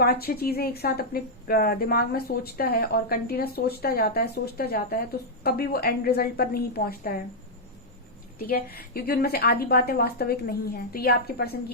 चीजें एक साथ अपने दिमाग में सोचता है और कंटिन्यूस सोचता जाता है तो कभी वो एंड रिजल्ट पर नहीं पहुंचता है, ठीक है, क्योंकि उनमें से आधी बातें वास्तविक नहीं है। तो ये आपके पर्सन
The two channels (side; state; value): both; normal; correlation -0.06